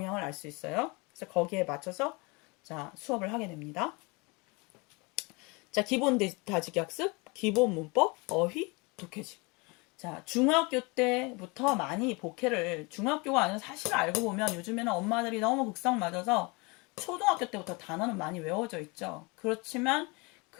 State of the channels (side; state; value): right; quieter; 27.9 dB